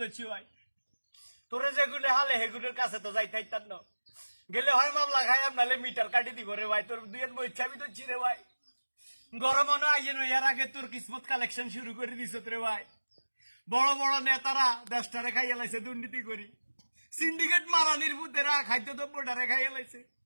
দিচ্ছি ভাই তোরে যেগুলো হালে হেগুলোর কাছে তো যাইতাই তার ন গেলে হয় মামলা খাই আপনালে মিটার কাটি দিব রে ভাই তোর দুই বই চাবি তো রে ভাই গরম মনে আইয়ে নয় এর আগে তোর কিসমত কালেকশন শুরু করে দিছ রে ভাই বড় বড় নেতারা দেশটারে খাইয়া লাইছে দুর্নীতি করি সিন্ডিকেট মারানির বুদ্ধেরা খাদ্যদ্রব্যটারে খাইয়া লাইছে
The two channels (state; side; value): inverted; both; correlation -1.00